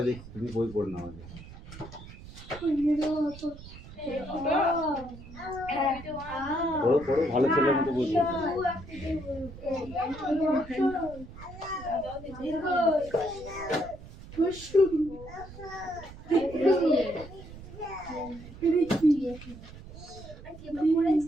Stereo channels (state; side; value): noise; right; rumble, 16 dB below the sound